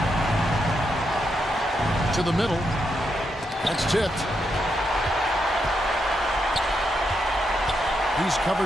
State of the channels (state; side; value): normal; both; correlation 0.82